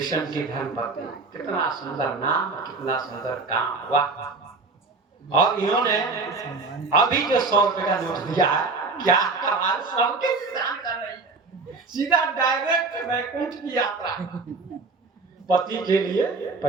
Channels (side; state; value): left; quieter; 3.9 dB